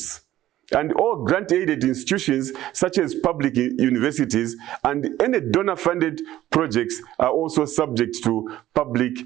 And all grant-aided institutions, such as public universities and any donor-funded projects, are also subject to public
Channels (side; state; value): left; quieter; 14.0 dB